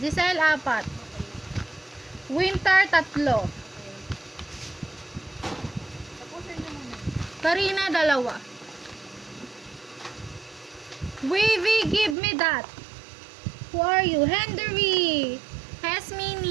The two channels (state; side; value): drops out; left; at 12.2 s